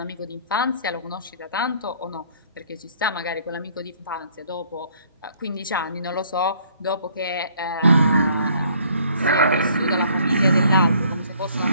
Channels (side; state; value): both; inverted; correlation -0.60